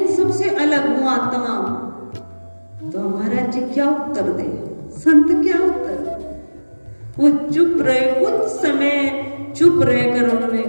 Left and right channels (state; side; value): inverted; both; correlation -1.00